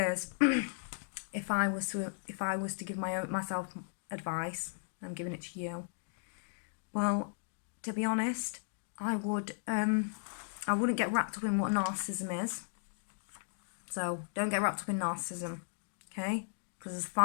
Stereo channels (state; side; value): silent; right; digital silence